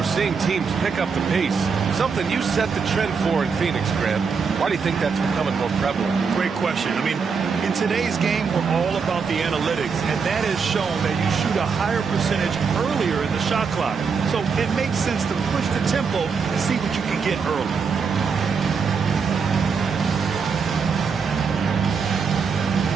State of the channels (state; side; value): quieter; left; 5.6 dB